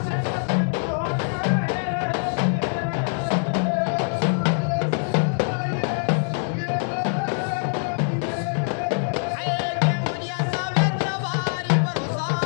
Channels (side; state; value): right; silent; 63 dB below the other